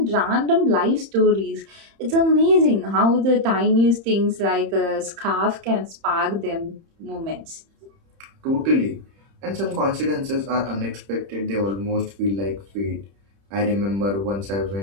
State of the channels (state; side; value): late; left; 30 ms